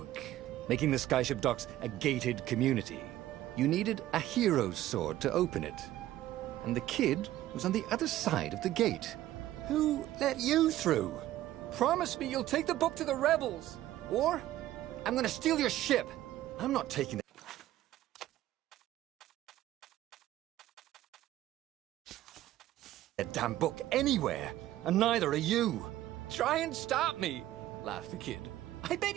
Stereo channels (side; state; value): left; quieter; 14.2 dB